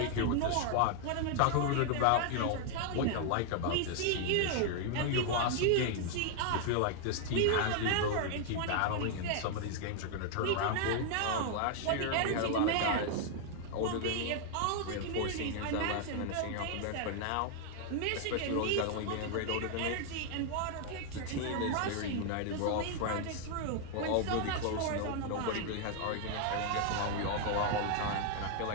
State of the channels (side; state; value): both; different; correlation 0.00